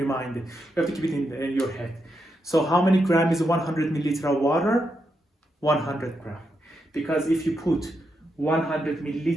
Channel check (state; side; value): normal; both; correlation 0.83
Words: it. You have to keep it in your head. So how many gram is 100 milliliter of water? 100 gram. Because if you put 100